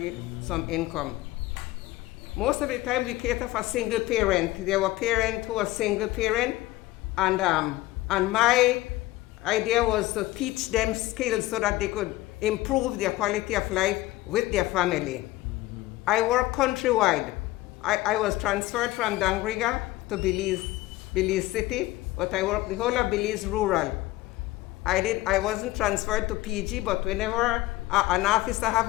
some income. Most of the time we cater for single parent. There were parents who were single parent, and my idea was to teach them skills so that they could improve their quality of life with their family. I work countrywide. I was transferred from Dangriga to Belize City, but I worked the whole of Belize rural. I wasn't transferred to PG, but whenever an officer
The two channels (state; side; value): quieter; right; 18.0 dB